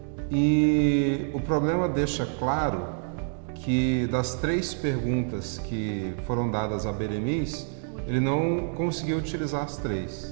E o problema deixa claro que das 3 perguntas que foram dadas a Beremiz, ele não conseguiu utilizar as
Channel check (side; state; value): left; silent; digital silence